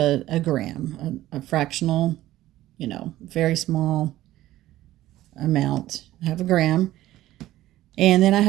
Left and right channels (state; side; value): quieter; left; 15.0 dB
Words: gram, a fractional, very small amount. I have a gram. And then I